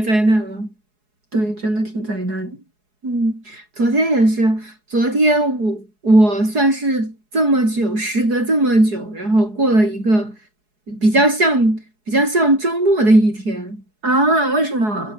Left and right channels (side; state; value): left; late; 4.7 ms